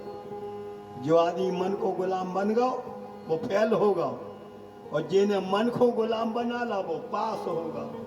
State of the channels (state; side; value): identical; both; correlation 1.00